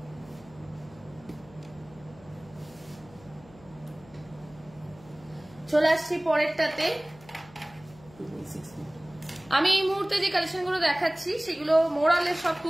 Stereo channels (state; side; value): noise; left; hum, 23 dB below the sound